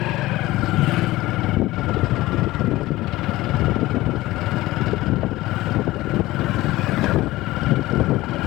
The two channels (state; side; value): quieter; right; 17.9 dB